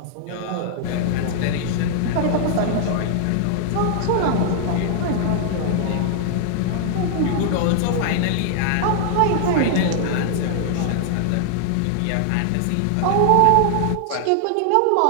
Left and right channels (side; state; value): both; different; correlation 0.00